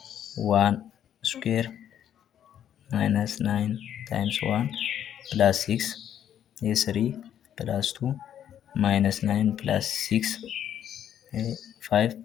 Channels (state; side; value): quieter; right; 10.0 dB